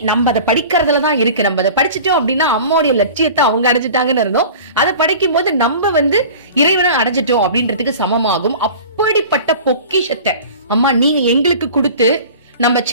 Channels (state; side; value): inverted; both; correlation -0.40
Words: நம்ம அதை படிக்கிறதுலதான் இருக்கு. நம்ம அதை படிச்சுட்டோம் அப்படின்னா அம்மாவுடைய லட்சியத்தை அவங்க அடைஞ்சிட்டாங்கன்னு இருந்தோம். அதை படிக்கும் போது நம்ம இறைவனை அடைஞ்சிட்டோம் அப்படின்றதுக்கு சமமாகும். அப்படிப்பட்ட பொக்கிஷத்தை அம்மா நீங்க எங்களுக்கு கொடுத்து, நம்ம